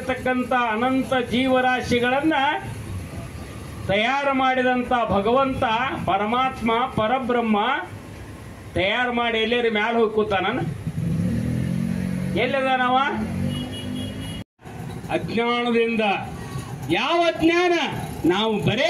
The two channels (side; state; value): both; identical; correlation 1.00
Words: ಅನಂತ ಜೀವರಾಶಿಗಳನ್ನ ತಯಾರು ಮಾಡಿದಂಥ ಭಗವಂತ ಪರಮಾತ್ಮ ಪರಬ್ರಹ್ಮ ತಯಾರು ಮಾಡಿ ಎಲ್ಲೇರಿ ಮ್ಯಾಲ ಹೋಗಿ ಕೂತಾನ. ಎಲ್ಲಿದಾನವ? ಅಜ್ಞಾನದಿಂದ. ಯಾವ ಅಜ್ಞಾನ? ನಾವು